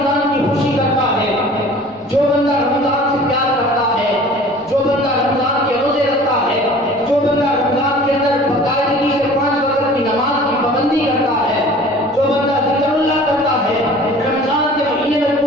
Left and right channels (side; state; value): both; normal; correlation 0.45